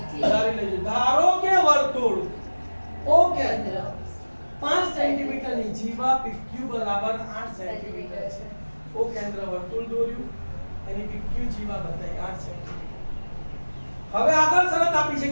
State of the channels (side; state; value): both; inverted; correlation -1.00